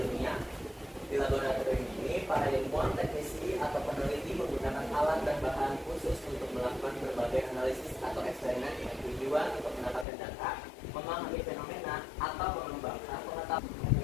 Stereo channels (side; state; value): right; drops out; at 10.1 s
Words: Di laboratorium ini, para ilmuwan, teknisi atau peneliti menggunakan alat dan bahan khusus untuk melakukan berbagai analisis atau eksperimen dengan tujuan untuk mendapatkan data, memahami fenomena atau mengembangkan pengetahuan.